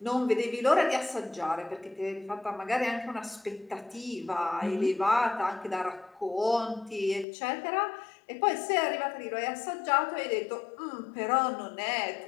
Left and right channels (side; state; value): right; drops out; at 7.2 s